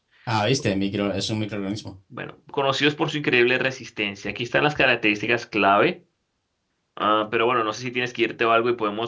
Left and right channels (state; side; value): identical; both; correlation 1.00